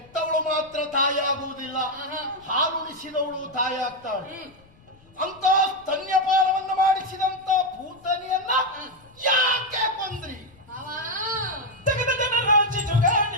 ಮಾತ್ರ ತಾಯಿ ಆಗುವುದಿಲ್ಲ, ಹಾಲುಣಿಸಿದವಳು ತಾಯಿ ಆಗ್ತಾಳೆ. ಅಂತ ಸ್ತನ್ಯಪಾನವನ್ನು ಮಾಡಿಸಿದಂತ ಭೂತನಿಯನ್ನ ಯಾಕೆ ಕೊಂದ್ರಿ? ಮಾವ ತೆಗೆದ ಜನರ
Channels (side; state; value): left; noise; rumble, 28 dB below the sound